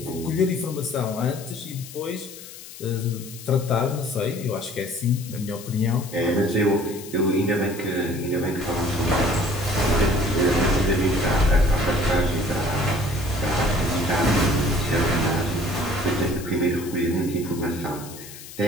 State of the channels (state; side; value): noise; left; hiss, 15 dB below the sound